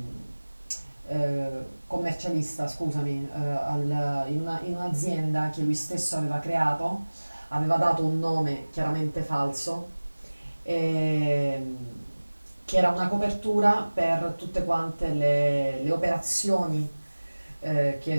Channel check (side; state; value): both; inverted; correlation -1.00